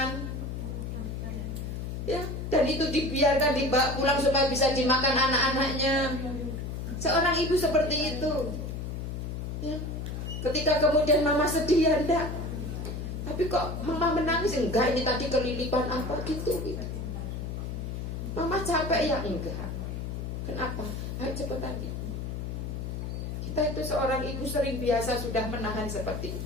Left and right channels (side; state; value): left; noise; hum, 5 dB below the sound